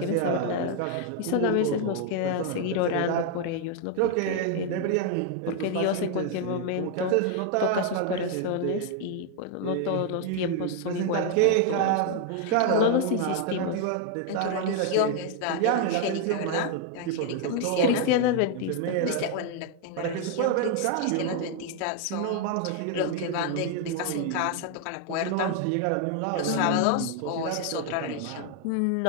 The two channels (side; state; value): both; different; correlation 0.01